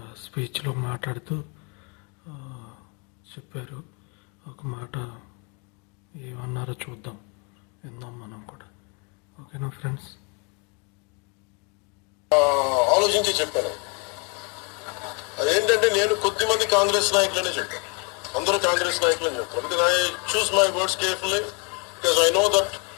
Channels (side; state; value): right; quieter; 33.8 dB